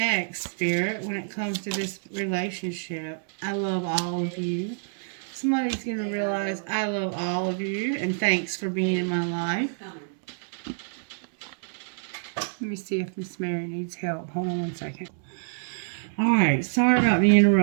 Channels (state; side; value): silent; left; digital silence